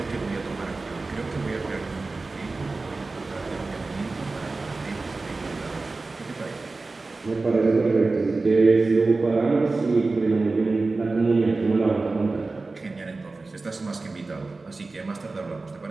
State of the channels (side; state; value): left; quieter; 3.6 dB